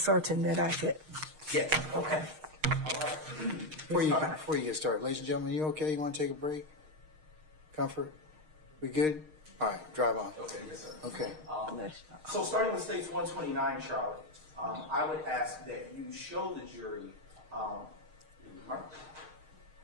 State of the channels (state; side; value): late; left; 6.5 ms